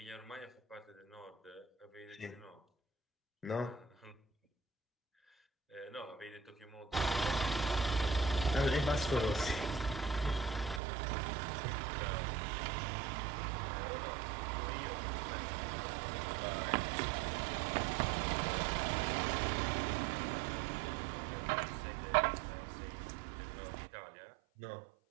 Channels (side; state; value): left; drops out; at 10.8 s